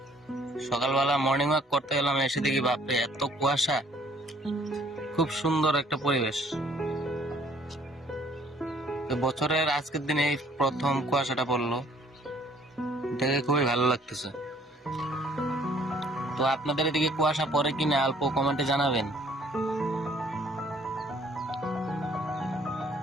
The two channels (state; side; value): normal; both; correlation 0.60